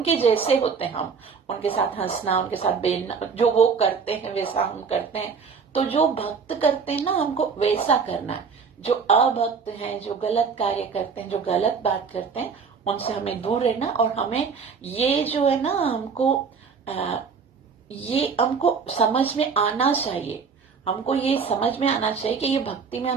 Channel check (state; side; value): quieter; left; 5.7 dB